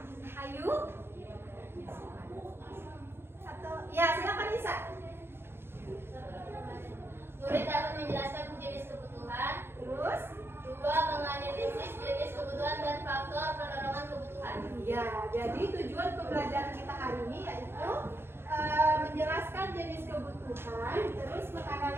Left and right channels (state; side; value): late; left; 0.11 ms